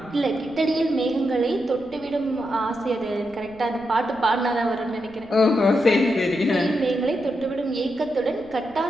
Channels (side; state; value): right; noise; rumble, 25 dB below the sound